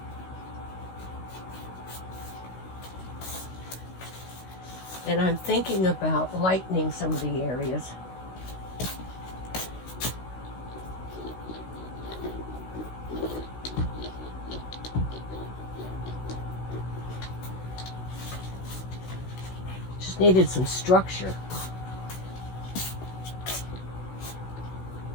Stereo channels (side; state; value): right; late; 16 ms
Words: And I'm thinking about lightening some of the areas. Just needed some structure.